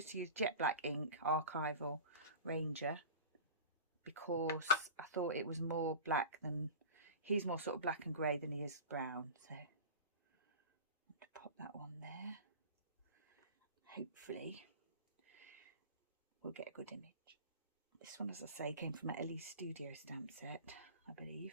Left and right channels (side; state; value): both; inverted; correlation -0.35